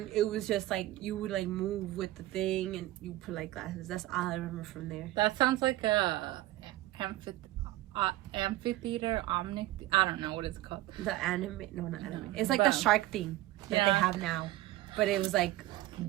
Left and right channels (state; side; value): quieter; left; 16.3 dB